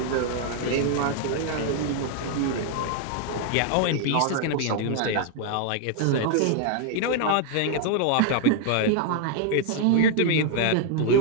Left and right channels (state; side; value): different; both; correlation 0.00